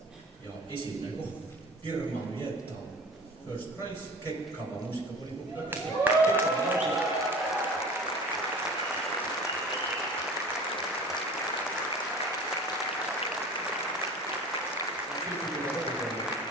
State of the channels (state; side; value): normal; both; correlation 0.40